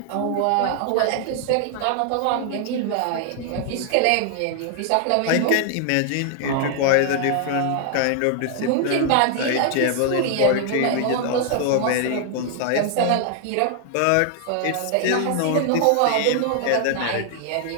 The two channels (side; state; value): both; different; correlation 0.00